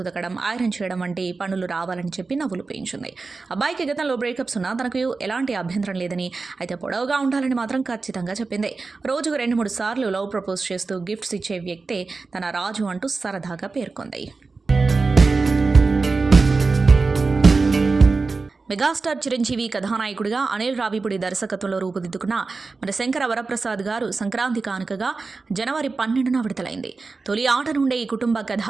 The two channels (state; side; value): quieter; left; 4.1 dB